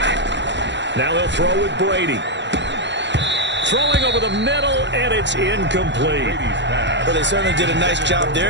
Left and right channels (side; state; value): left; late; 0.52 ms